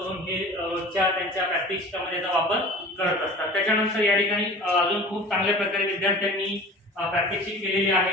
हे रोजच्या त्यांच्या प्रात्यक्षिकामध्ये याचा वापर करत असतात। त्याच्यानंतर या ठिकाणी अजून खूप चांगल्या प्रकारे विद्यार्थ्यांनी प्रात्यक्षिक केलेले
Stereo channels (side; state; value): both; normal; correlation 0.40